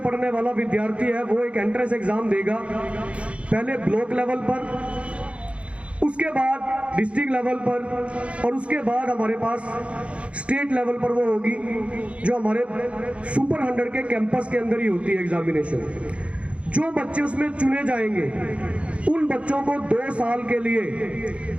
पढ़ने वाला विद्यार्थी है वो एक एंट्रेंस एग्जाम देगा, पहले ब्लॉक लेवल पर, उसके बाद डिस्ट्रिक्ट लेवल पर और उसके बाद हमारे पास स्टेट लेवल पर वो होगी जो हमारे सुपर 100 के कैंपस के अंदर ही होती है एग्जामिनेशन। जो बच्चे उसमें चुने जाएंगे उन बच्चों को 2 साल के लिए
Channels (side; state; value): left; late; 0.061 ms